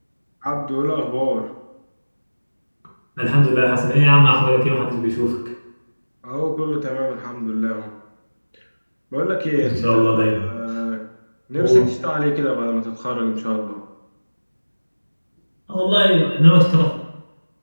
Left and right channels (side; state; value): both; inverted; correlation -1.00